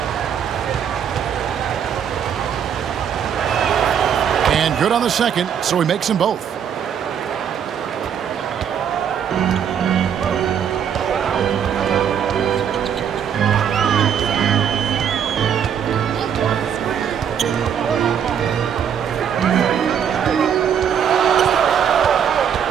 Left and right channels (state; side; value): quieter; left; 8.3 dB